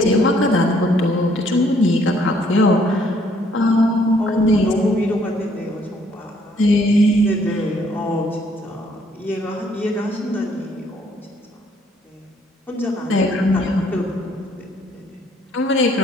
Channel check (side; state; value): both; normal; correlation 0.65